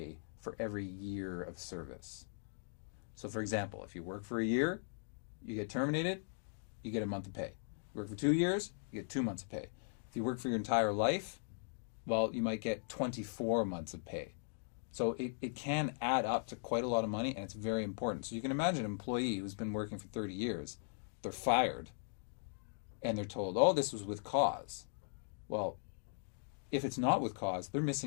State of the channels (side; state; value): right; silent; digital silence